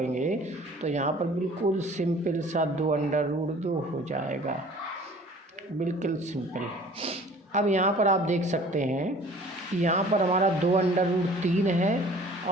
तो यहाँ पर बिल्कुल सिंपल सा 2 अंडर रूट 2 हो जाएगा, बिल्कुल सिंपल। अब यहाँ पर आप देख सकते हैं कि यहाँ पर हमारा 2 अंडर रूट 3 है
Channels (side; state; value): both; normal; correlation 0.49